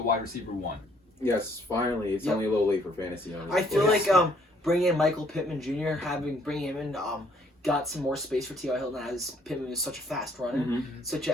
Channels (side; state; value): both; normal; correlation 0.64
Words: wide receiver 1. Yes, finally. It's only a little late for fantasy owners. I feel like bringing in Michael Pittman Jr., bringing him in, got some more space for T.Y. Hilton, as Pittman is such a fast runner, such an